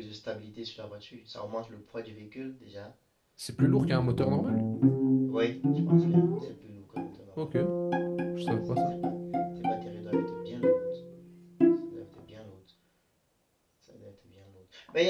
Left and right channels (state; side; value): identical; both; correlation 1.00